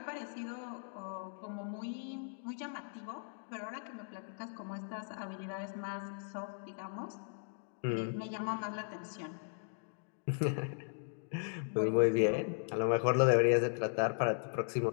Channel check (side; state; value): right; silent; digital silence